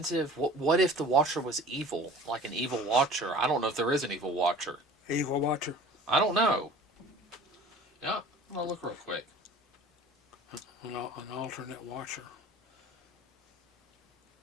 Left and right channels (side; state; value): both; normal; correlation 0.44